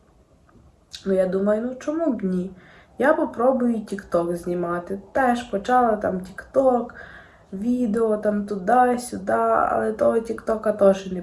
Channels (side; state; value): both; identical; correlation 1.00